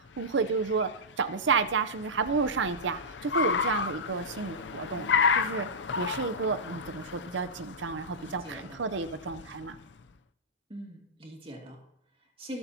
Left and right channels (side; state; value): both; normal; correlation -0.12